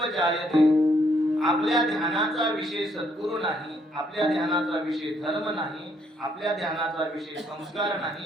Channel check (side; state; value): both; normal; correlation 0.70